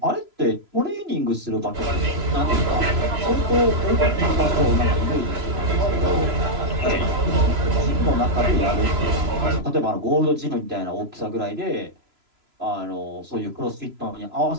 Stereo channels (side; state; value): left; late; 3.0 ms